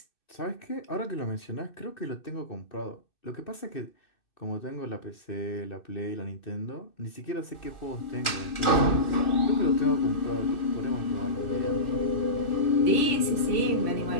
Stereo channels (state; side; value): late; right; 2.6 ms